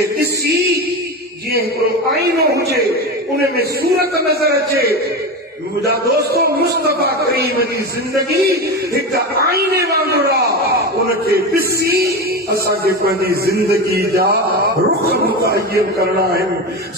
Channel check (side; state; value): both; normal; correlation 0.21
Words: ॾिसी जीअं हिकिड़ो आईनो हुजे उन में सूरत नज़र अचे। मुझा दोस्तों, मुस्तफा करीम जी जिंदगी एक आईने वांगुरु आहे, उनखे ॾिसी असांखे पंहिंजी जिंदगी जा रुख मुतयन करणा आहिनि।